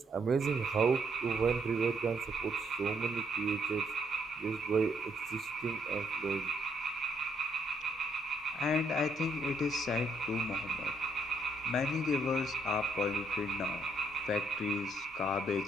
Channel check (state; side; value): normal; both; correlation 0.73